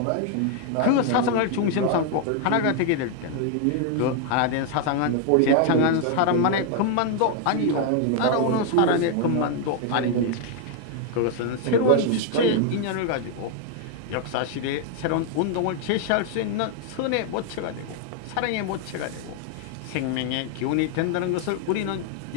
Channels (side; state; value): both; different; correlation 0.00